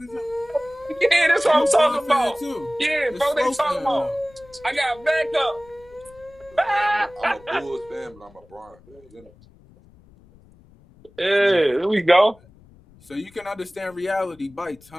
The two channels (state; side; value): noise; left; rumble, 26 dB below the sound